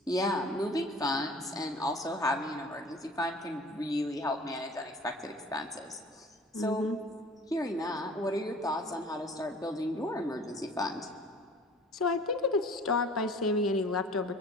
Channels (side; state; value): both; normal; correlation 0.47